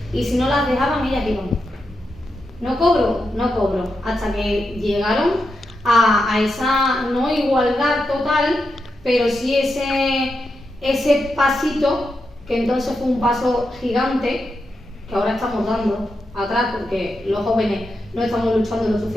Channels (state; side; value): normal; both; correlation 0.86